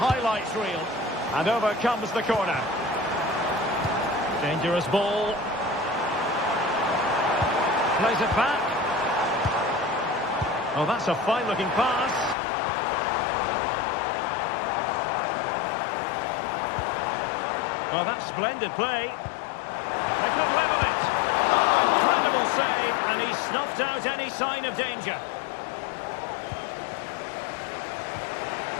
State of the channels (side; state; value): right; drops out; at 12.4 s